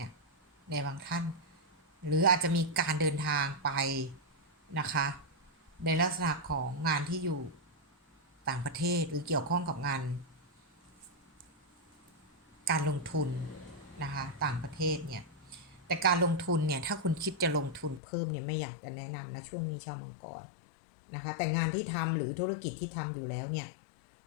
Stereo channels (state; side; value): drops out; right; at 18.0 s